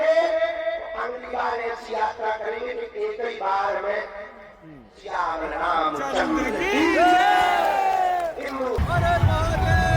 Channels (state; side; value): identical; both; correlation 1.00